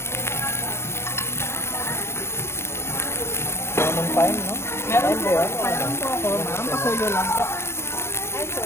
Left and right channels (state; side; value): late; right; 0.12 ms